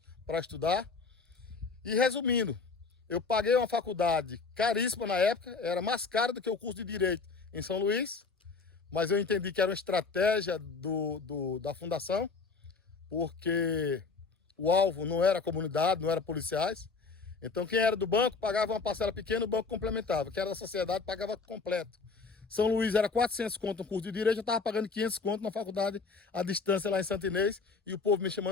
para estudar. E resumindo, eu paguei uma faculdade caríssima na época, era mais cara do que o curso de Direito em São Luís, mas eu entendi que era uma estratégia da fundação, porque o alvo não era a comunidade, não era policiais. Então quem era do banco pagava uma parcela pequena, o banco complementava. Quem era da sociedade pagava completo. São Luís era 400 conto no curso de Direito, eu estava pagando 500 conto na faculdade à distância lá em Santo Inês, e o povo me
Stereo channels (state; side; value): quieter; right; 4.5 dB